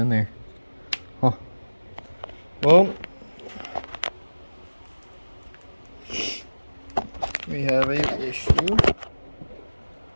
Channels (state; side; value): inverted; both; correlation -1.00